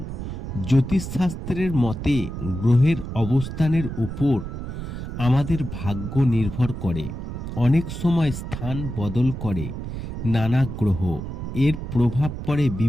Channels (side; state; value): right; noise; rumble, 7 dB below the sound